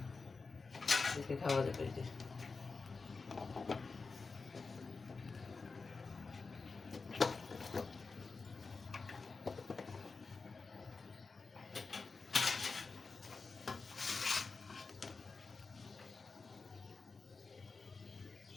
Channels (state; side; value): quieter; right; 4.3 dB